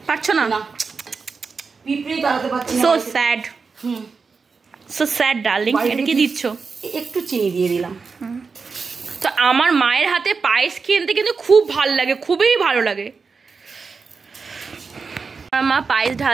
পারছো না? না, পিঁপড়েই তাড়াতে পারছি না। So sad, so sad darling. এটা কি দিচ্ছ? একটু চিনি দিয়ে দিলাম। তো আমার মায়ের হাতে পায়েস খেতে কিন্তু খুব ভালো লাগে, খুবই ভালো লাগে। আমার মা পায়েস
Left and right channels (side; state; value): left; quieter; 4.9 dB